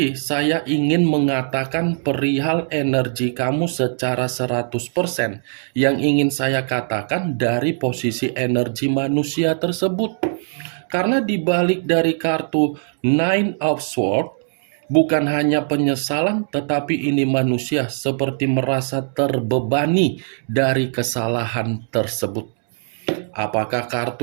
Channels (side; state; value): left; silent; digital silence